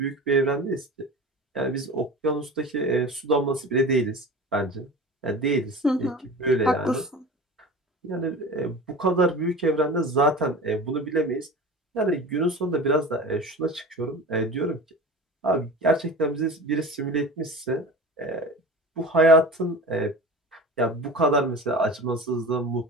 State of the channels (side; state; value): both; normal; correlation 0.34